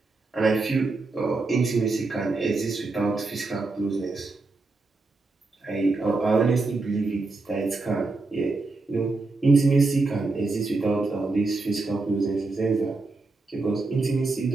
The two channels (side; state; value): left; quieter; 3.6 dB